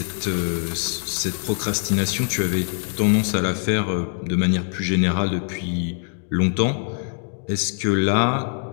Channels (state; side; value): silent; right; 59 dB below the other